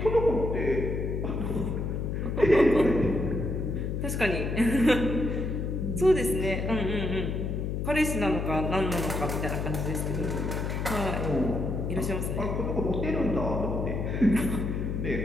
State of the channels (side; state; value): left; noise; hum, 2 dB below the sound